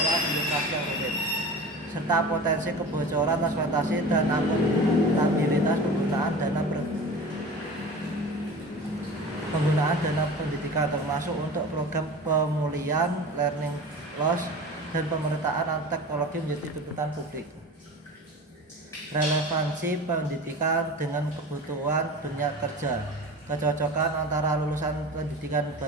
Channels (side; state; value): both; normal; correlation 0.35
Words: di lokasi yang rumit, serta potensi kebocoran transportasi dan akuntabilitas penggunaan dana pendidikan, termasuk untuk program pemulihan learning loss dan pemerataan teknologi menjadi tuntutan publik. Relevansi pendidikan dengan kebutuhan dunia kerja. kecocokan antara lulusan pendidikan